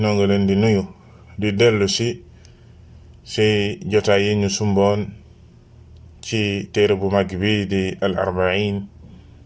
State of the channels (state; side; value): identical; both; correlation 1.00